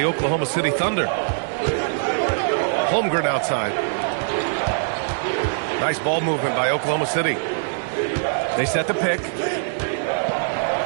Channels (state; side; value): silent; left; digital silence